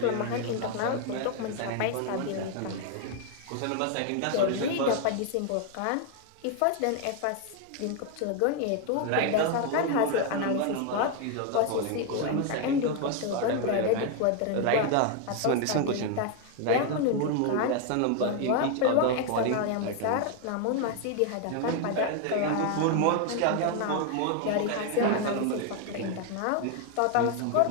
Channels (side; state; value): both; different; correlation 0.01